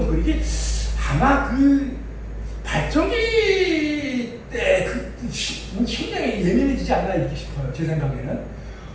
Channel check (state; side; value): identical; both; correlation 1.00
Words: 이게 아마 그 발전기 때 심장이 예민해지지 않나 이렇게 싶어요. 제 생각에는.